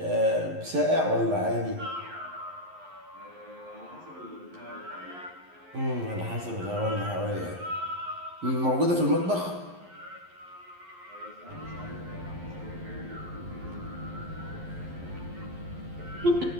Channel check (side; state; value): left; late; 11 ms